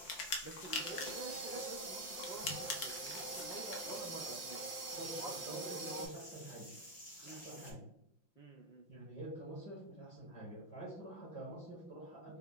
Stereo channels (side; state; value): right; late; 5.8 ms